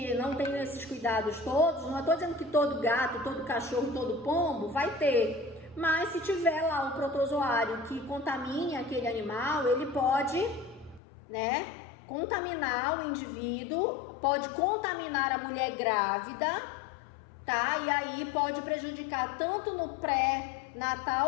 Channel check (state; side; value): drops out; right; at 11.0 s